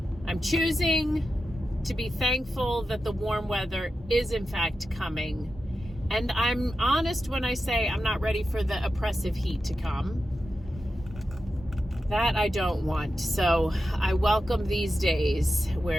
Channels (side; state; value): both; normal; correlation 0.91